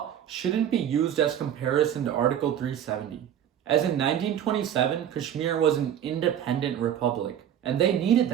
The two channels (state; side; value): quieter; left; 9.9 dB